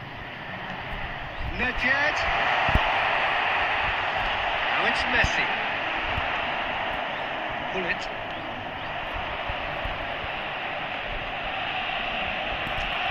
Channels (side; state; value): both; identical; correlation 1.00